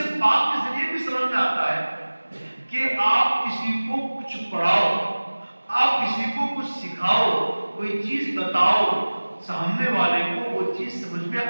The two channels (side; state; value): both; inverted; correlation -1.00